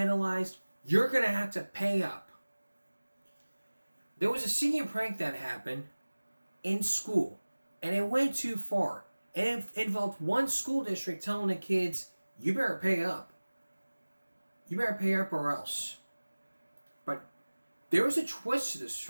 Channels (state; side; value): inverted; both; correlation -1.00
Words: You're going to have to pay up. There was a senior prank that happened in school, and it went too far. And it involved one school district telling the kids, you better pay up. You better pay up or else. But there was a twist to this